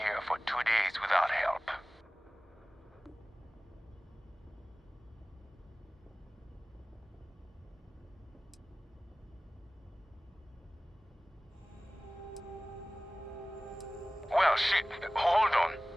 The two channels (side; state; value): both; normal; correlation 0.98